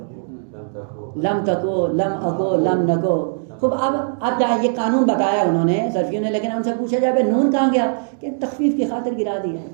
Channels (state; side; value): silent; left; digital silence